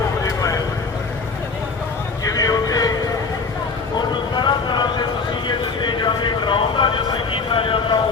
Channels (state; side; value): quieter; right; 4.5 dB